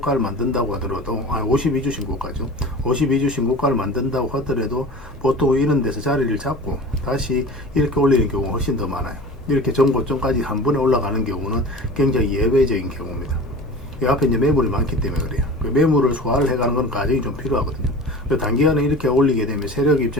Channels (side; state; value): both; normal; correlation 0.36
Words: 만든다고 하더라도 52주 신고가죠. 52주 신고가를 만든다고 하더라도 보통 이런 데서 자리를 잡고 다시 이렇게 올리는 경우가 훨씬 더 많아요. 이렇게 전고점까지 한 번에 올라가는 경우는 굉장히 예외적인 경우입니다. 이 앞에 이제 매물이 많기 때문에 그래요. 그 매물을 소화를 해가는 건 과정이 좀 필요하거든요. 단기간에 이렇게 올리게 되면 세력